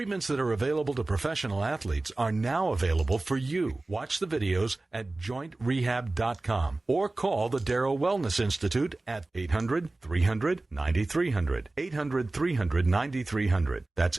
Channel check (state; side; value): quieter; left; 3.0 dB